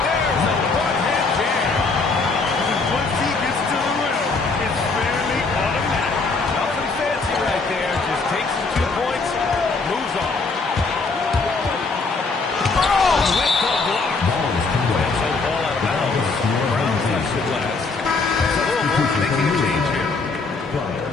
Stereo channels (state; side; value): quieter; right; 4.0 dB